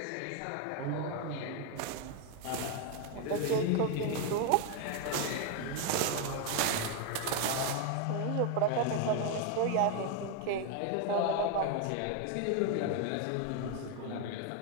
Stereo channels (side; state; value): both; different; correlation 0.01